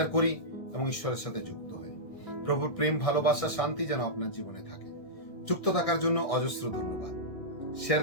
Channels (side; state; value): right; late; 1.7 ms